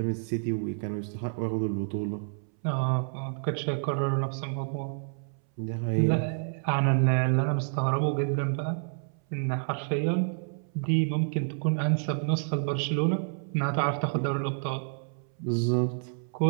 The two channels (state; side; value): silent; left; 59 dB below the other